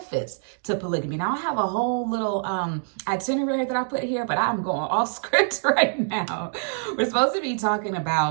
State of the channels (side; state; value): left; silent; digital silence